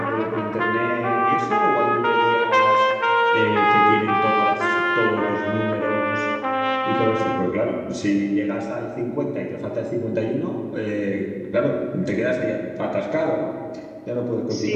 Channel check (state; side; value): identical; both; correlation 1.00